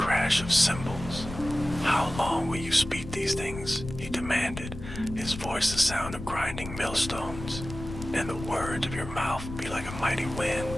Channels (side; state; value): left; noise; rumble, 10 dB below the sound